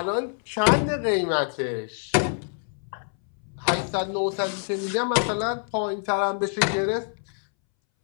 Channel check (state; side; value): silent; right; 61 dB below the other